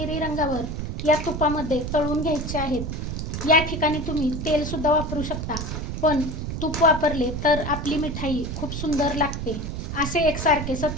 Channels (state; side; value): noise; right; rumble, 4 dB below the sound